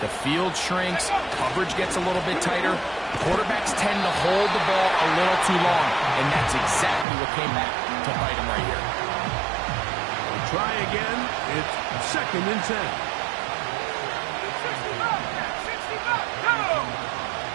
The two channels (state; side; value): drops out; left; at 7.1 s